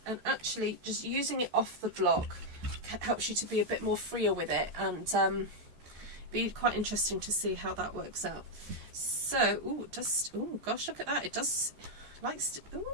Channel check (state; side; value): late; left; 14 ms